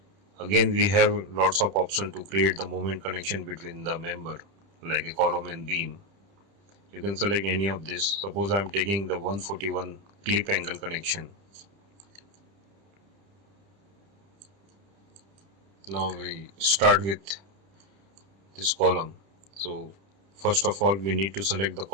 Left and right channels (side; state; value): left; late; 30 ms